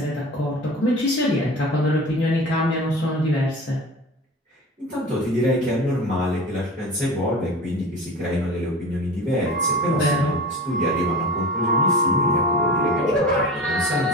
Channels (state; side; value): normal; both; correlation 0.34